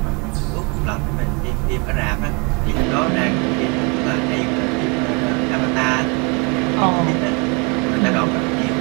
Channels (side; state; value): left; quieter; 31.7 dB